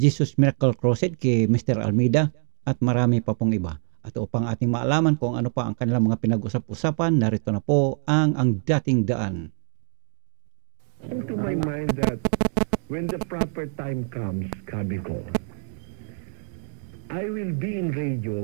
Miracle Crusade kay Mr. Almeida at marami pa pong iba. At upang ating maalaman kung ano pa ang kanilang mga pinag-usap-usapan, narito na po ang dating daan. To my mind that when the proper time comes, sabi ko, I will be in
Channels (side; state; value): left; silent; 57 dB below the other